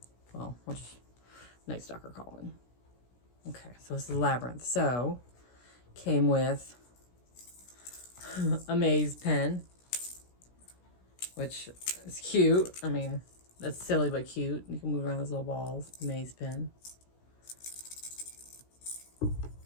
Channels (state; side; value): late; right; 16 ms